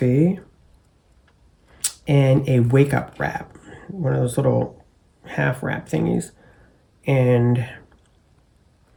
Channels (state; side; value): identical; both; correlation 1.00